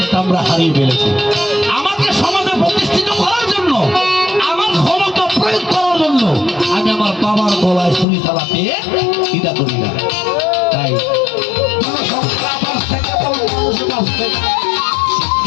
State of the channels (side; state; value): right; drops out; at 8.1 s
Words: আমরা হারিয়ে ফেলেছি। আমাকে সমাজে প্রতিষ্ঠিত করার জন্য, আমার ক্ষমতা প্রয়োগ করার জন্য আমি আমার বাবার গলায় ছুরি চালাতে দ্বিধা করি না। তাই জনসংখ্যা বাড়ছে কেবল মানুষ বাড়ছে।